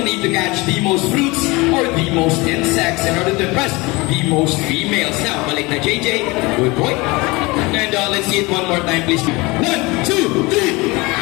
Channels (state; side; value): quieter; right; 23.9 dB